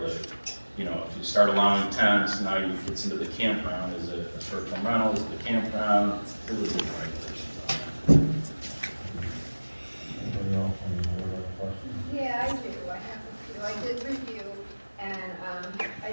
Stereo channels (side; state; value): both; inverted; correlation -1.00